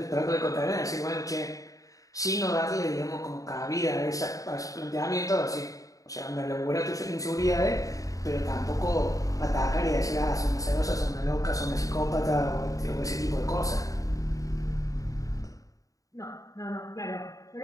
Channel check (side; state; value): right; late; 0.16 ms